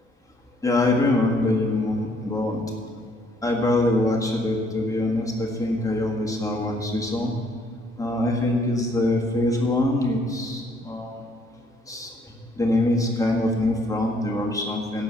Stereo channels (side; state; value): both; normal; correlation 0.65